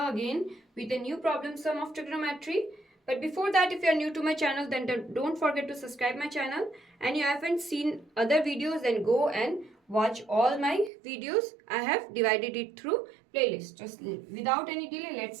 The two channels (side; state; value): left; drops out; at 10.9 s